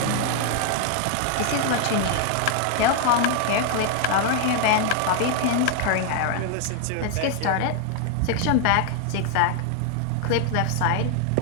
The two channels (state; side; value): different; both; correlation 0.00